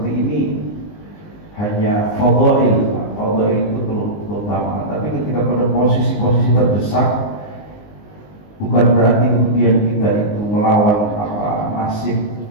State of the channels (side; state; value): right; late; 19 ms